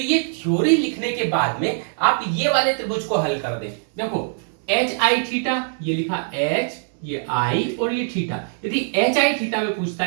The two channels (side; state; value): left; silent; 64 dB below the other